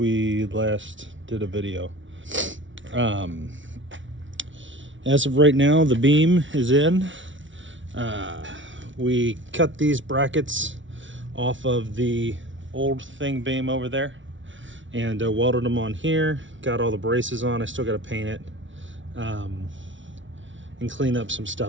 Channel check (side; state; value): left; late; 0.56 ms